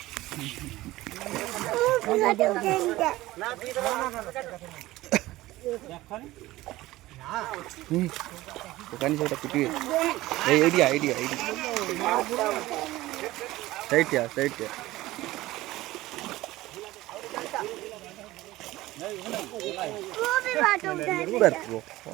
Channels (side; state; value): left; quieter; 17.5 dB